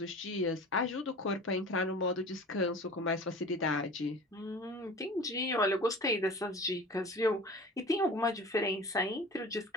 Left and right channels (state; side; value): normal; both; correlation 0.39